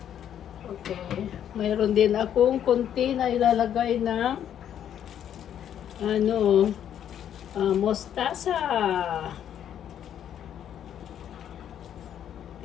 Okay. Mayroon din akong konti na ilalagay na mostasa.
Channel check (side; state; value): right; quieter; 9.8 dB